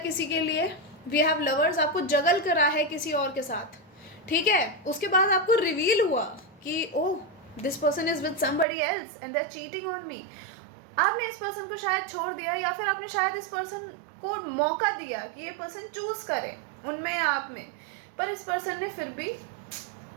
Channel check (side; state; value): left; drops out; at 8.7 s